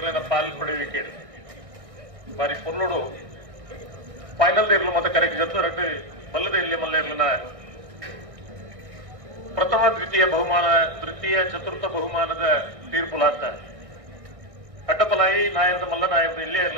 ಪಾಲ್ ಪಡೆಯುವಿಕೆ ಬಾರಿ ಪೊರ್ಲೋಡು ಫೈನಲ್ ಇರ್ಲು ಮತ್ತೆ ಕರೆಕ್ಟ್ ಜೊತೆ ರಟ್ಟು ಬಲ್ಲದ ಇಲ್ಲಿ ಮಲ್ಲ ಇರ್ಲಿನ ಪ್ರಥಮ ದ್ವಿತೀಯ ಬಹುಮಾನ ತೃತೀಯ ಚತುರ್ಥ ಬಹುಮಾನದ ತೀರ್ಪುಲಾತ ಅಡ್ಡಪಲಾಯಿ ನಾಯರದ ಮಲ್ಲ ನಾಯರದ ಇಲ್ಲೇ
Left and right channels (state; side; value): late; left; 1.6 ms